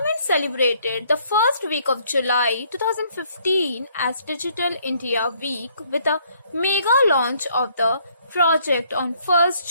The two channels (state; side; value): inverted; both; correlation -0.65